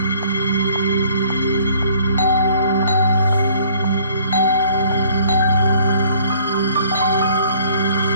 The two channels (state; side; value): inverted; both; correlation -0.58